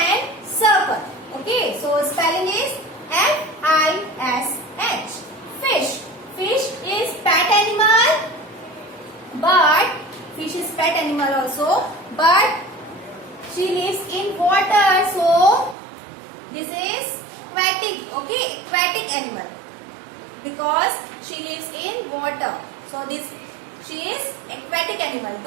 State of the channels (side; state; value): left; drops out; at 15.8 s